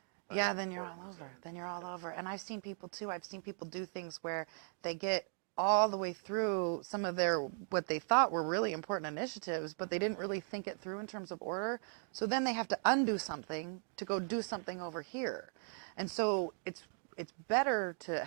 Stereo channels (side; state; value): left; silent; 52 dB below the other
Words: by then you're all importance, over. Then you're okay. all over. And I've seen people too. I've seen people do things where they get all the way through some of what they thought were really important initiatives, but they didn't really think it through in terms of order. So then they have to undo something to go do something over here. And so it's better to